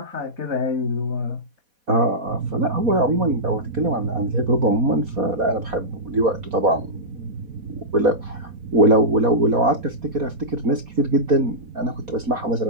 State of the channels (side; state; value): left; late; 4.1 ms